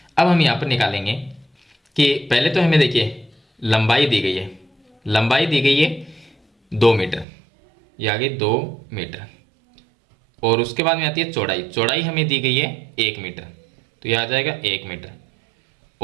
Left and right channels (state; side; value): drops out; left; at 7.2 s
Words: अब हम यहाँ पर निकालेंगे कि पहले तो हमें देखिए लंबाई दी गई है, लंबाई दी गई है 2 मीटर, ये आगे 2 मीटर, और उसके बाद में आती है चौड़ाई, चौड़ाई हमें दी गई है 1 मीटर, तो यह आ जाएगा 1 मीटर,